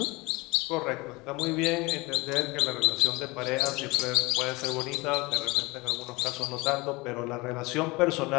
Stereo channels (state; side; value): quieter; right; 23.9 dB